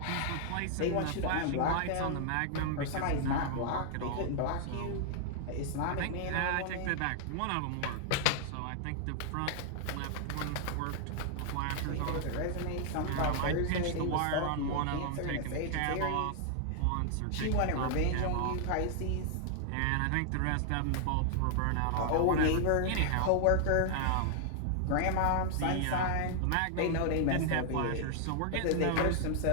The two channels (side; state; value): both; different; correlation 0.00